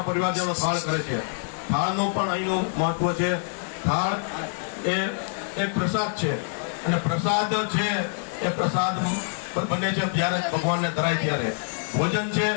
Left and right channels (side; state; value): right; silent; digital silence